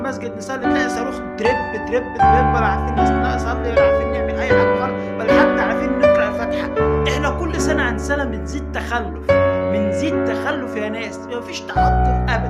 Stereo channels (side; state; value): both; identical; correlation 1.00